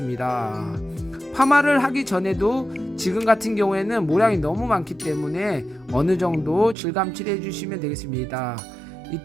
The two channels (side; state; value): left; drops out; at 6.8 s